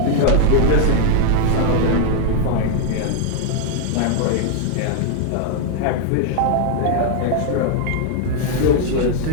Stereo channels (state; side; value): different; both; correlation 0.00